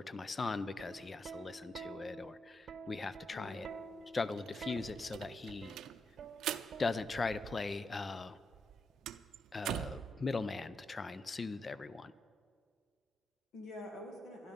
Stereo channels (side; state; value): both; normal; correlation 0.83